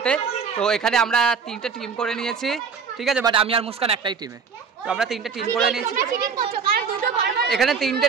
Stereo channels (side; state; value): left; quieter; 5.8 dB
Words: তো এখানে আমরা 3টে টিম করে নিয়েছি, ঠিক আছে। বাট আমি আর মুস্কান একটাই টিমে, তো আমরা 3টে টিম করে নিয়েছি। এখানে 3টে